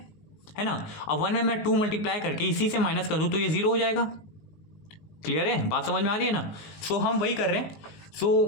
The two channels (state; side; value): late; right; 19 ms